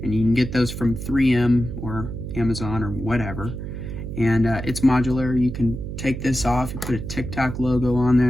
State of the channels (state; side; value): noise; right; hum, 7 dB below the sound